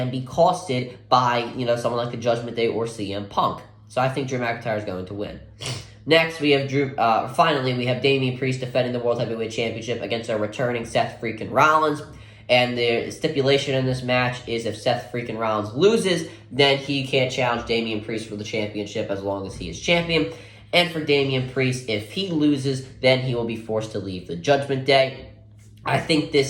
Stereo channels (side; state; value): both; identical; correlation 1.00